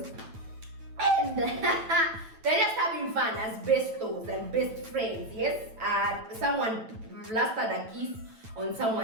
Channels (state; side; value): late; left; 9.1 ms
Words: and they're just having fun as bestos and best friends, yes? Someone blasted a kiss on